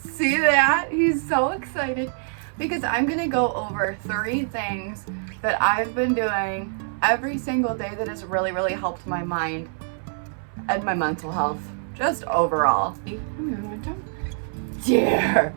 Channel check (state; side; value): silent; left; 62 dB below the other